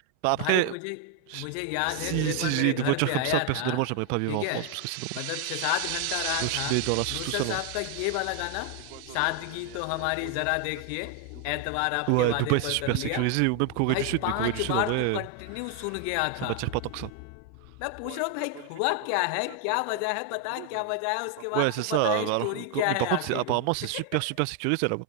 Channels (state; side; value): different; both; correlation 0.01